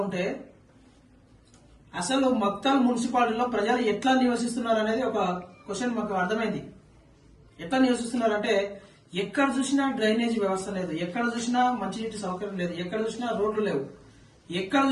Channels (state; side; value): identical; both; correlation 1.00